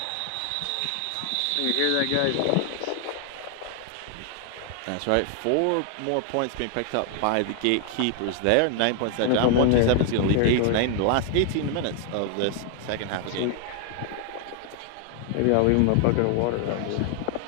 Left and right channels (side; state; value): both; different; correlation 0.00